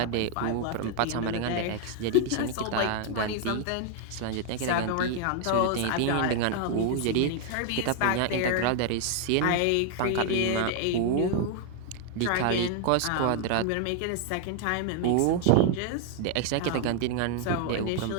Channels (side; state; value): both; different; correlation 0.00